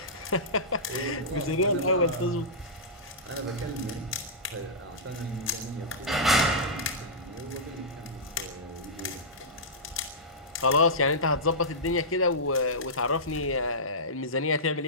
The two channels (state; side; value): normal; both; correlation -0.15